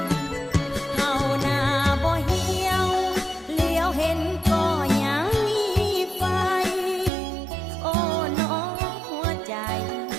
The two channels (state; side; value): drops out; left; at 7.1 s